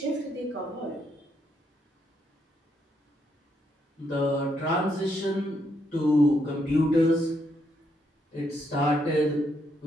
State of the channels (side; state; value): both; normal; correlation 0.76